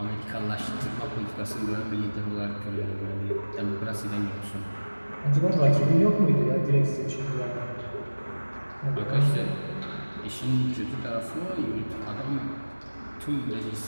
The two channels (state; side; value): inverted; both; correlation -1.00